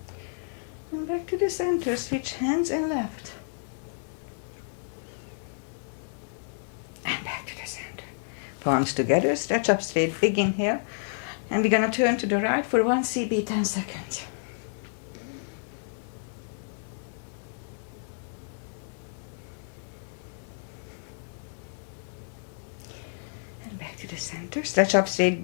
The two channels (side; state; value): right; silent; digital silence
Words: And back to the center, switch hands and left. And back to the center. Palms together, stretch up straight, big inhale. And we're gonna turn to the right for 1 CB, 10 seconds. And back to the center, stretch up straight,